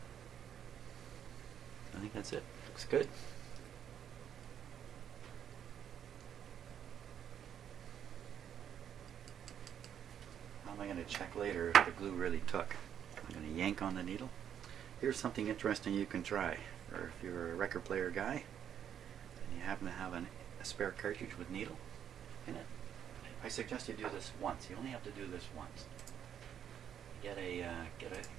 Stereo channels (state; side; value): quieter; left; 9.1 dB